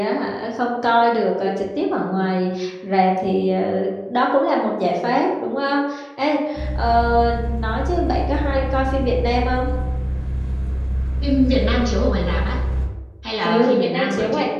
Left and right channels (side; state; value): both; identical; correlation 1.00